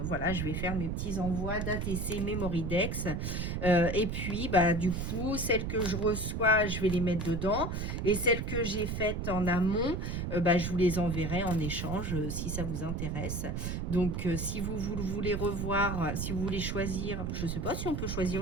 je vais faire mes petits envois d'ATC Memoridex. Et puis, bah, du coup, celles que je reçois, je vais les mettre dedans. Et celles que j'ai faites en amont, bah, je vous les enverrai en échange si ça vous intéresse. Donc, si vous voulez revoir, si vous voulez choisir, je ne sais pas si on peut choisir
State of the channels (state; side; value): noise; right; rumble, 2 dB below the sound